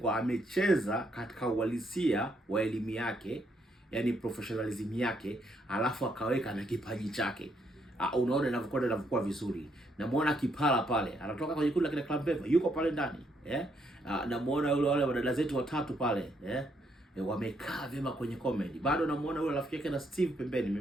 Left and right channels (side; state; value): both; normal; correlation 0.74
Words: amecheza katika uhalisia wa elimu yake, yani professionalism yake, alafu akaweka na kipaji chake. Unaona inavyokuwa vizuri. Namuona Kipala pale, anatoka kwenye kundi la kina Club Beva, yuko pale ndani. Namuona wale wadada zetu watatu pale, wamekaa vyema kwenye comedy. Bado namuona yule rafiki yake na Steve pembeni,